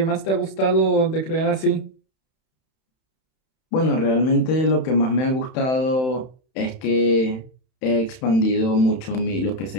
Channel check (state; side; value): late; right; 31 ms